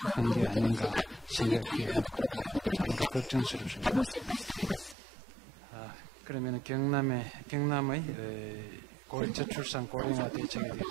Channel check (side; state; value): left; drops out; at 5.0 s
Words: のおもてなしが非常に足りないところがあるのではないかととても心配しております。それではキョンサン南道